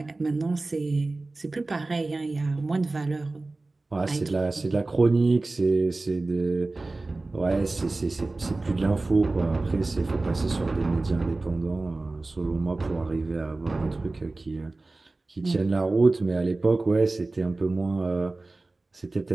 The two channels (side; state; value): left; quieter; 3.2 dB